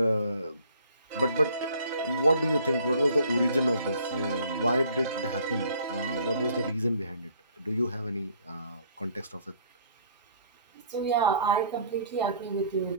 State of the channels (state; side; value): inverted; both; correlation -0.57